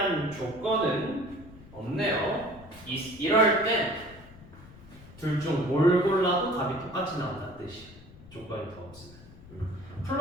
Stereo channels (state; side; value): noise; left; rumble, 19 dB below the sound